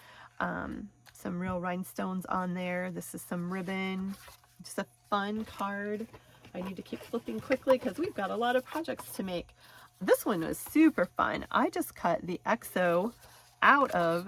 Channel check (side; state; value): both; identical; correlation 1.00